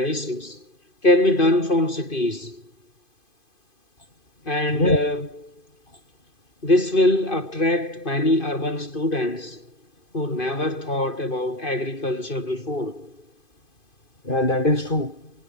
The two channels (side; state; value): right; late; 2.5 ms